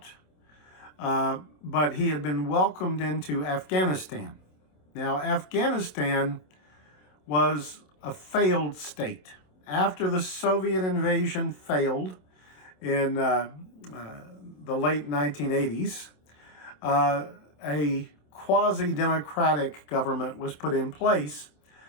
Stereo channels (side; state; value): right; late; 27 ms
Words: but he had been welcomed into Afghanistan. Now, Afghanistan was a failed state. After the Soviet invasion failed in the late 1980s, a quasi-democratic government was put in place,